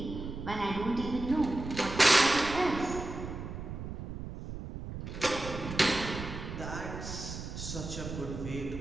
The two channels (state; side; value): noise; right; rumble, 8 dB below the sound